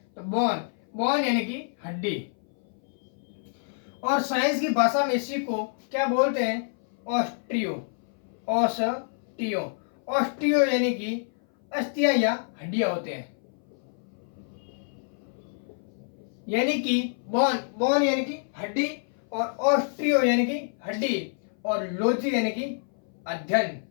तो बोन यानी कि हड्डी। और साइंस की भाषा में इसी को क्या बोलते हैं? ऑस्टियो यानी कि अस्थियां या हड्डियां होते हैं। यानी कि बोन यानी कि हड्डी, और ऑस्टियो यानी कि हड्डी, और लॉजी यानी कि अध्ययन।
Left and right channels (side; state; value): right; silent; 58 dB below the other